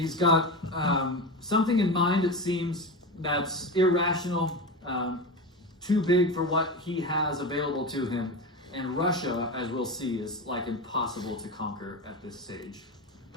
got something in mind, it seems, that's irrational, too big for what he has available to him. And Russia, as we'll see, is like impossible to conquer at this stage.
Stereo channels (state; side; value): normal; both; correlation 0.23